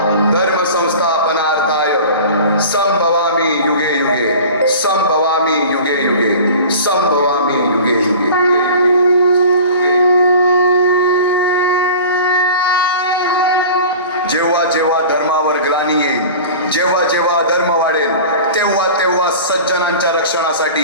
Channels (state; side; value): inverted; both; correlation -0.39